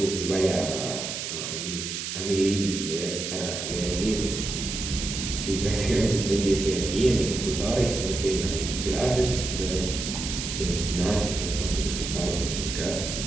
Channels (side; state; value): right; noise; hiss, 5 dB below the sound